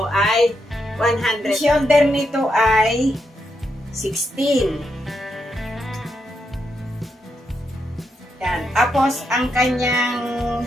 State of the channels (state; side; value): normal; both; correlation 0.82